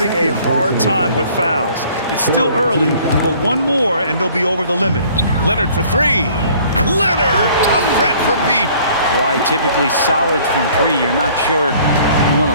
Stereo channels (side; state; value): both; inverted; correlation -0.55